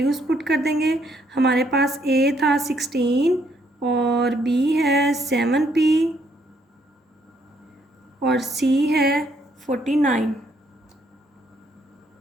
पुट कर देंगे। हमारे पास a था 16 और b है 7p और c है 49।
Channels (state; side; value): normal; both; correlation 0.70